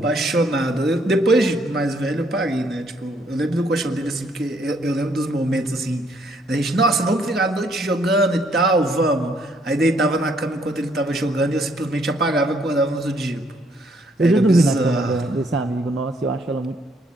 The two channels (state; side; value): normal; both; correlation 0.68